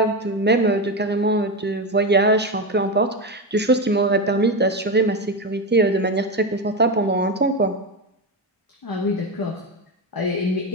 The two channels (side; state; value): both; normal; correlation 0.15